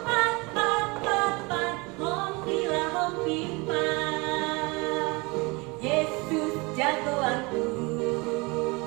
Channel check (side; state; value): left; quieter; 26.7 dB